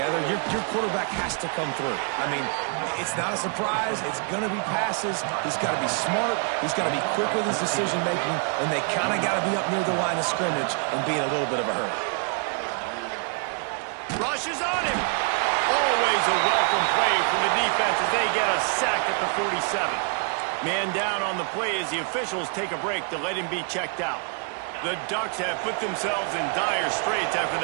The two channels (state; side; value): quieter; left; 39.8 dB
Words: Your quarterback has to come through. I mean, it's not a surprise. It's going to be passes. He's got to be smart. He's got to be quick with his decision-making, and they kind of got to be up near the line of scrimmage and be in a little bit of a hurry. Rushes on him. Always a welcome play from the defense as they get a sack at the 47. Man down on the play as the officials take a break to let him be checked out. The Ducks have put themselves in dire straits after